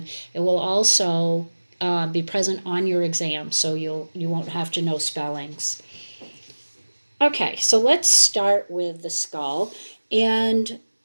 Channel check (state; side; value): inverted; both; correlation -1.00